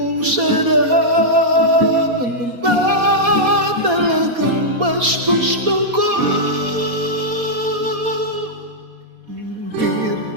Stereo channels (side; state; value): left; late; 4.2 ms